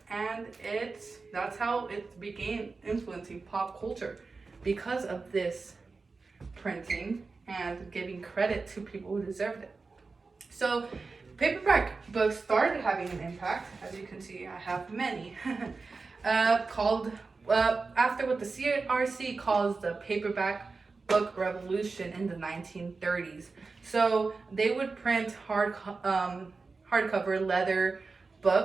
and that's how it began influencing pop culture because of this printing and giving credit to people who deserved it. So paperback books started having an impact. As you can see, I have many, called after what the CRC calls the paperback book revolution in the 1930s. So they would print hardcover leather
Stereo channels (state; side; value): quieter; left; 4.2 dB